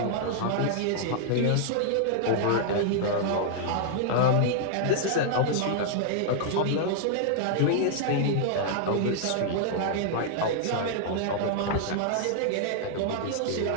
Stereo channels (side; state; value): both; different; correlation -0.01